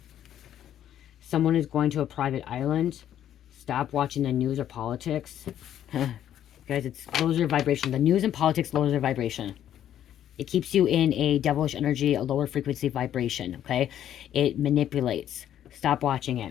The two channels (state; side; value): quieter; right; 10.8 dB